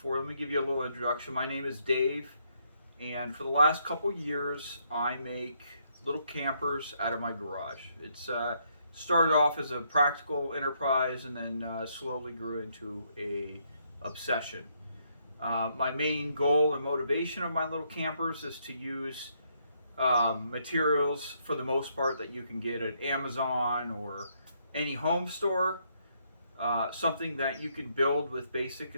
let me give you a little introduction. My name is Dave, and for the last couple years I make little campers out of my garage. It's started off as a practical enterprise and then slowly grew into a obsession. My main goal and motivation of my little campers is to use materials for the most part that you can get at Amazon or any home store. Something that you can build with basic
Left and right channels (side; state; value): both; inverted; correlation -0.73